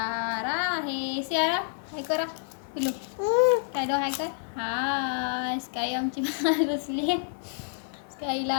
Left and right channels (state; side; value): silent; right; 57 dB below the other